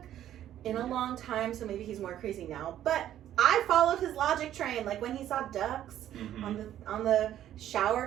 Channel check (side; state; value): left; quieter; 11.7 dB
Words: in a long time, so maybe he's more crazy now. But I followed his logic train, when he saw ducks on the